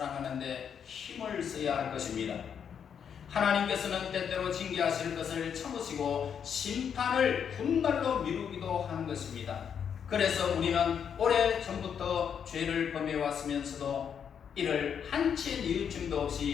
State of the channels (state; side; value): quieter; right; 7.7 dB